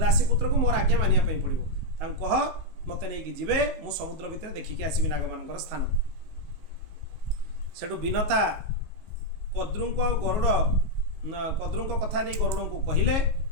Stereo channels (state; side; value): late; left; 19 ms